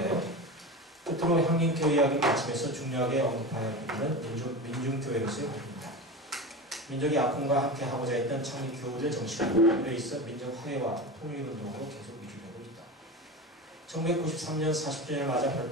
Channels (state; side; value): normal; both; correlation 0.26